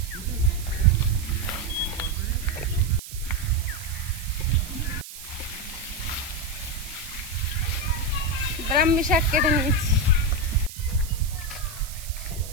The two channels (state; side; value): noise; right; hiss, 13 dB below the sound